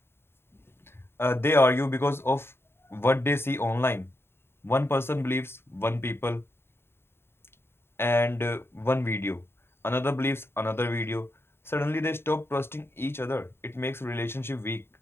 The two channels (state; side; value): late; right; 0.11 ms